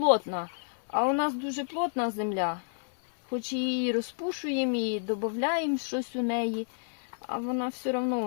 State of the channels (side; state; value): right; silent; 57 dB below the other